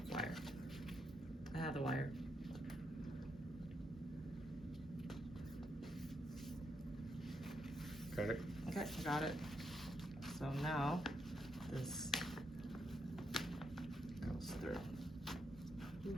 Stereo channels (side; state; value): both; normal; correlation 0.80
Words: wire. I have the wire. Got it. Okay, I got it. So now, this goes through.